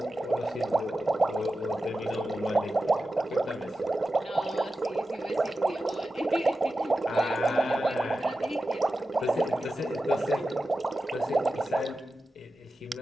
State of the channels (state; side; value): normal; both; correlation 0.93